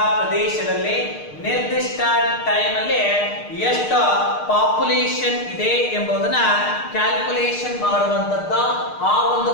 ಪ್ರದೇಶದಲ್ಲಿ ನಿರ್ದಿಷ್ಟ time ಅಲ್ಲಿ ಎಷ್ಟು population ಇದೆ ಎಂಬುದನ್ನ calculation ಮಾಡುವಂತದ್ದು ಆ ಒಂದು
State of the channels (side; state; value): right; late; 6.6 ms